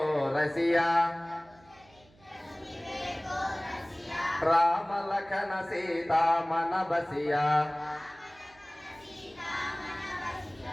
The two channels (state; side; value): noise; right; hum, 29 dB below the sound